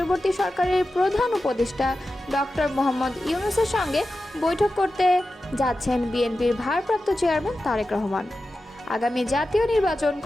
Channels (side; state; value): both; normal; correlation 0.93